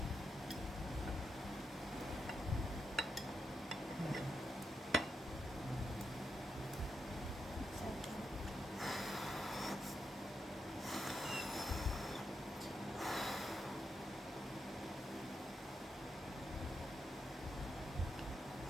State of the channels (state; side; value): normal; both; correlation 0.83